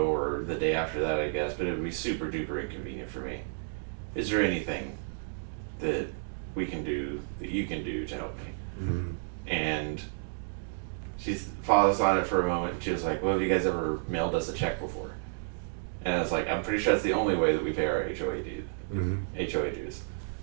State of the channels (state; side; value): silent; left; digital silence